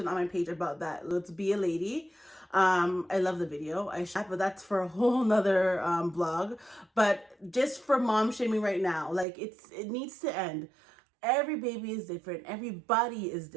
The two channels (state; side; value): drops out; left; at 9.2 s